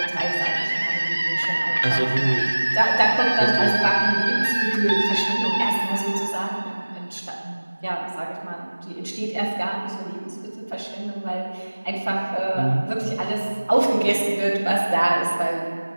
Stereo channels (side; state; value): both; inverted; correlation -1.00